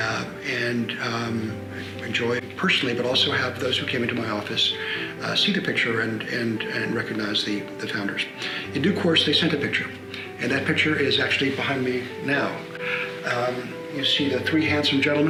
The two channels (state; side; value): identical; both; correlation 1.00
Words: and enjoy personally, but also have those who came into my office see the picture and recognize the founders. In due course, they sent a picture. And that picture is actually behind me now. You see the three handsome